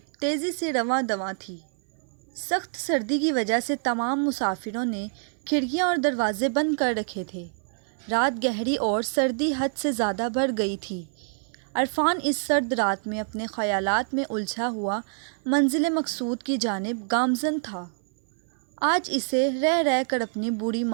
تیزی سے رواں دواں تھی۔ سخت سردی کی وجہ سے تمام مسافروں نے کھڑکیاں اور دروازے بند کر رکھے تھے۔ رات گہری اور سردی حد سے زیادہ بڑھ گئی تھی۔ عرفان اس سرد رات میں اپنے خیالات میں الجھا ہوا منزل مقصود کی جانب گامزن تھا۔ آج اسے رہ رہ کر اپنی بوڑھی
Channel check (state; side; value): silent; left; 58 dB below the other